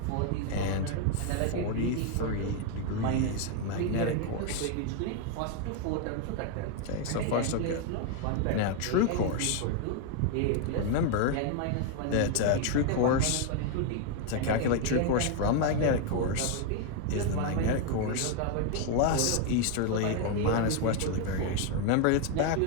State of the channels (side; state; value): both; different; correlation 0.00